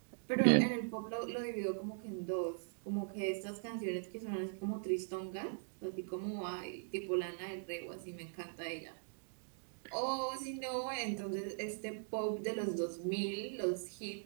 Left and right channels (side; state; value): left; silent; digital silence